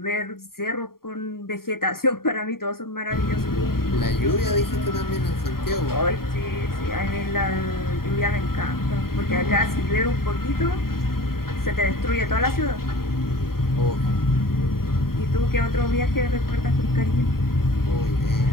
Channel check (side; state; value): right; late; 0.93 ms